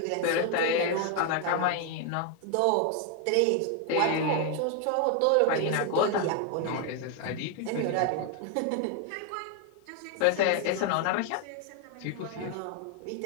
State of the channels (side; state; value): both; different; correlation 0.01